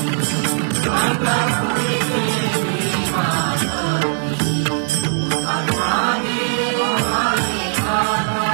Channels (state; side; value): silent; left; 66 dB below the other